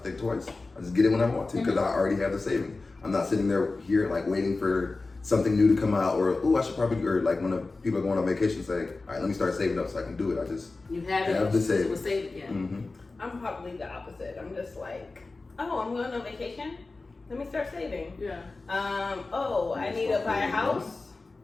twice. I just get it when I want to because I already have the savings. I'm not sitting there here like waiting for something new to come out or I should probably, or like when people are going on vacation say, all right, let me start saving up so I can do it. I just You have it. have the savings. It was saved, yeah. Mm-hmm. I'm probably the opposite. I'm just like, oh, I'm going on vacation. Let me start saving. Yeah. Oh, I need to buy a house.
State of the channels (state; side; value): quieter; right; 3.5 dB